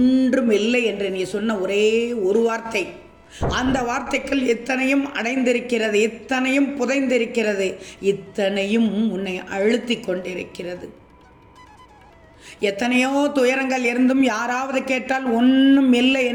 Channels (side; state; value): both; identical; correlation 1.00